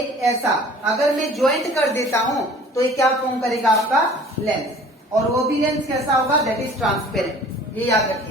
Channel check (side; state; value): both; normal; correlation 0.48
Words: ऐसा अगर मैं ज्वाइंट कर देता हूं तो ये क्या फॉर्म करेगा आपका, लेंस। और वो भी लेंस कैसा होगा, दैट इज ट्रांसपेरेंट, ये याद